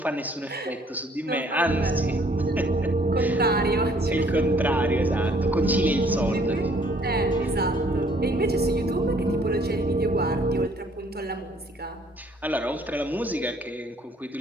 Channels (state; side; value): normal; both; correlation 0.61